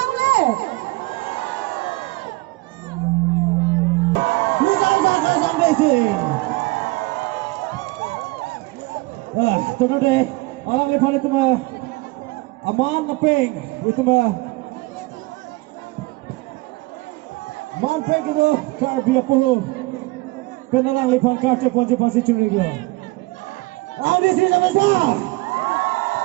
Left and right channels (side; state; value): left; quieter; 22.3 dB